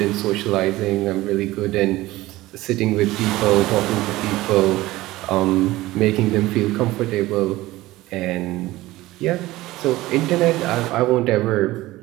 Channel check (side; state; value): left; quieter; 17.8 dB